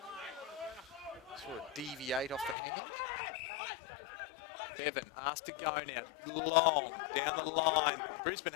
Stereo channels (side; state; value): right; drops out; at 2.6 s